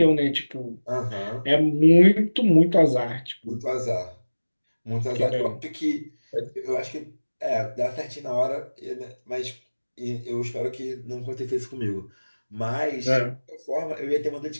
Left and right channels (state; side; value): inverted; both; correlation -1.00